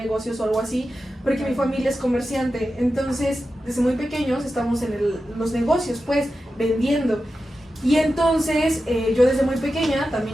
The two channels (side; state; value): both; normal; correlation 0.92